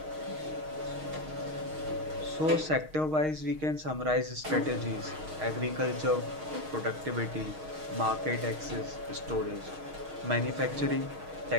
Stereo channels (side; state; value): left; late; 6.4 ms